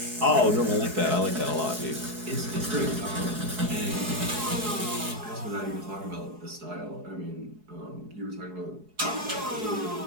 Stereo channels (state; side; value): late; left; 4.7 ms